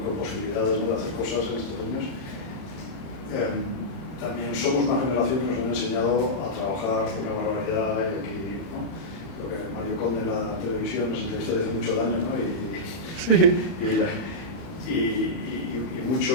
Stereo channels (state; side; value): late; right; 31 ms